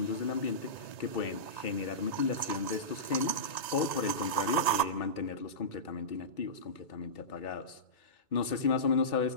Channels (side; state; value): right; late; 1.9 ms